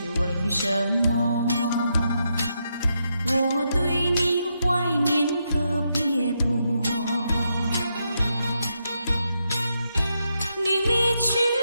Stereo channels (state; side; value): inverted; both; correlation -0.82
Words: 为什么，我对你怀念特别多。你离去